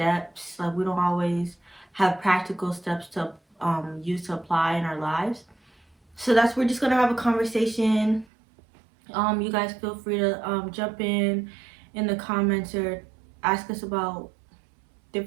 Like we don't always have practical steps to use to apply in our lives. So that's we're just gonna have a conversation. You guys feel free to jump in the comments or ask us about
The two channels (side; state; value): left; drops out; at 8.2 s